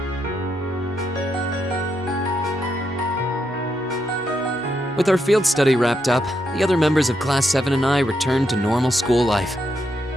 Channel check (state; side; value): noise; right; hum, 27 dB below the sound